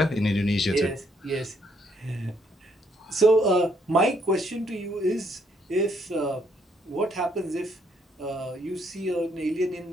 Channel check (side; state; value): both; normal; correlation 0.71